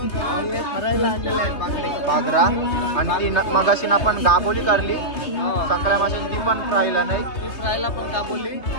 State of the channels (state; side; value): late; right; 3.3 ms